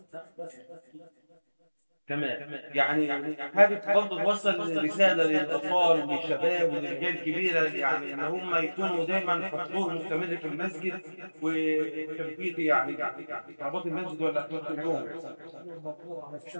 تمام، يعني حابب برضه توصل رساله للاطفال وللشباب وللرجال الكبيره، يعني ان هم يكونوا دايما حضور مستمر في المسجد وتثبيت يعني رباط المسجد ولا اليوم.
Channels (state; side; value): inverted; both; correlation -1.00